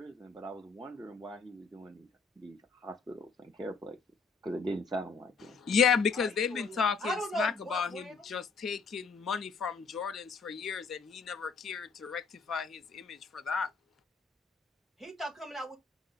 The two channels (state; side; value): quieter; right; 4.8 dB